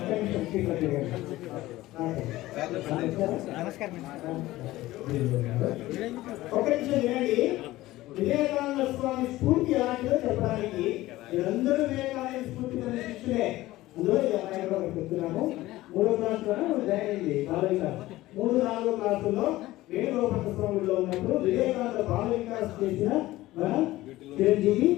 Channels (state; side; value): quieter; right; 17.1 dB